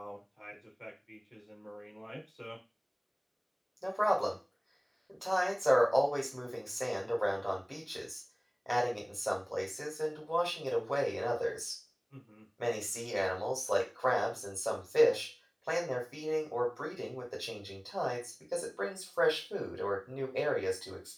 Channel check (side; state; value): both; identical; correlation 1.00